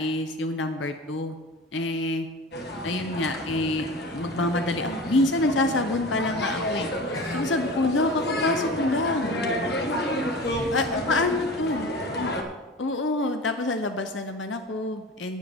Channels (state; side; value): normal; both; correlation 0.35